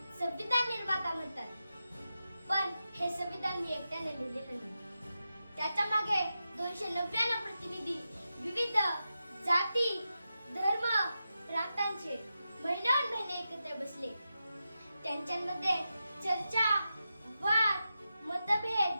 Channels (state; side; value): inverted; both; correlation -0.90